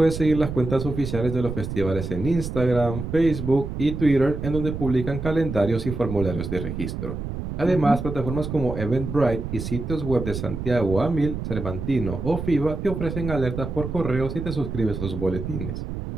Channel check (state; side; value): noise; right; rumble, 6 dB below the sound